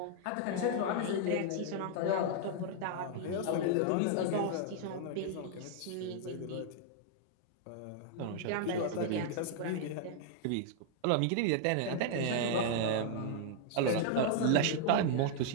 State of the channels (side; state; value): both; different; correlation -0.01